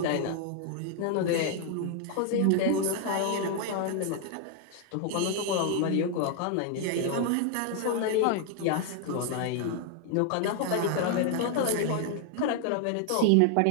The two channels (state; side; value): different; both; correlation 0.00